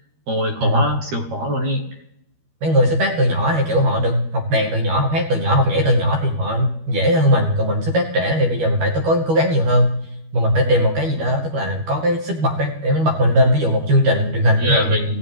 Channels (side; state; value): left; late; 13 ms